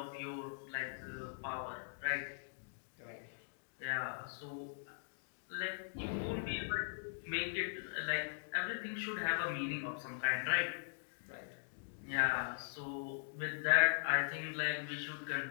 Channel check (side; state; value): right; silent; digital silence